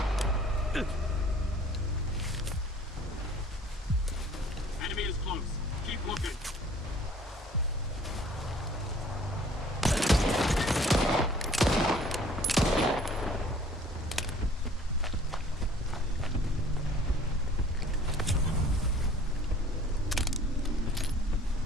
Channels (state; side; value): normal; both; correlation 0.53